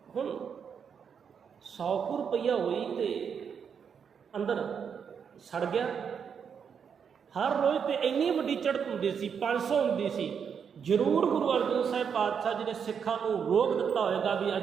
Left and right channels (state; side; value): quieter; left; 7.0 dB